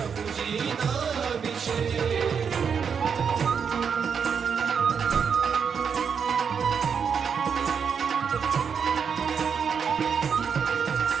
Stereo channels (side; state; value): left; quieter; 6.7 dB